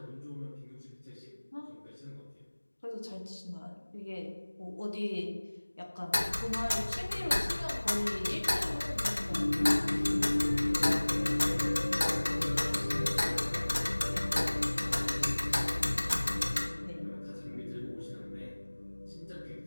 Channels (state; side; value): inverted; both; correlation -1.00